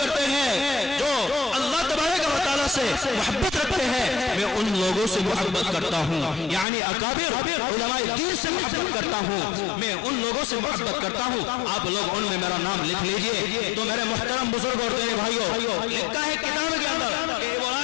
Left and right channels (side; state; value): right; drops out; at 6.7 s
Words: ہیں, جو اللہ تبارک و تعالیٰ سے محبت رکھتے ہیں, میں ان لوگوں سے محبت کرتا ہوں, یعنی اکابر علماء دین سے محبت کرتا ہوں, میں ان لوگوں سے محبت کرتا ہوں, آپ لوگ ان میں میرا نام لکھ لیجئے. تو میرے محترم بزرگ اور دینے بھائیوں, لکھا ہے کتاب کے اندر کہ